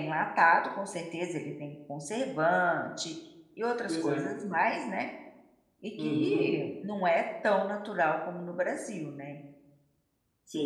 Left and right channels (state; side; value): identical; both; correlation 1.00